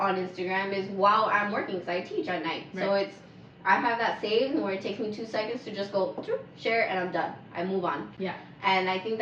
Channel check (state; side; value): identical; both; correlation 1.00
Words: Instagram is while I'm working, because I teach at night. Right. So I have that saved where it takes me 2 seconds to just go share and I'm done. I move on. Yeah. And I think